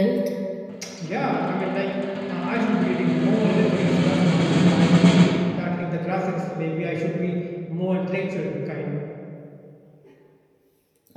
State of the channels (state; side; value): identical; both; correlation 1.00